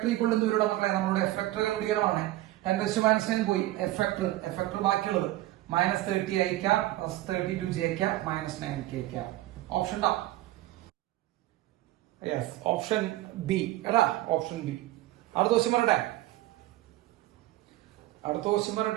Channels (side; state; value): left; quieter; 16.4 dB